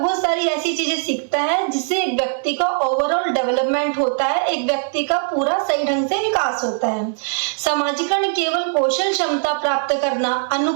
सारी ऐसी चीजें सीखता है जिससे एक व्यक्ति का ओवरऑल डेवलपमेंट होता है, एक व्यक्ति का पूरा सही ढंग से विकास होता है। समाजीकरण केवल कौशल क्षमता प्राप्त करना,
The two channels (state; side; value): silent; left; digital silence